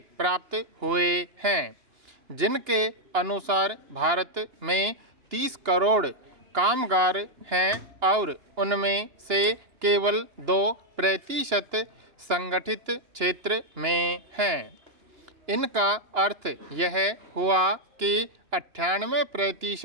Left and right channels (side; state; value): left; late; 2.9 ms